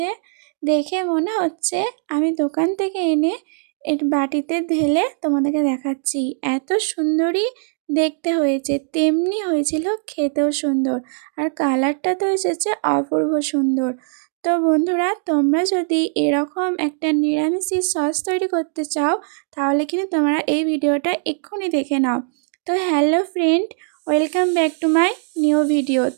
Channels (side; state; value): left; silent; digital silence